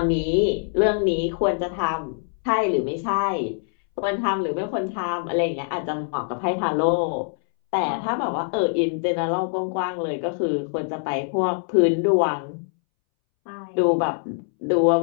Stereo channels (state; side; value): silent; right; 63 dB below the other